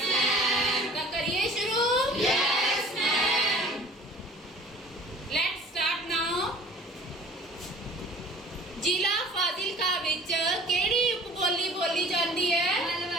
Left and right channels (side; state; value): both; normal; correlation 0.48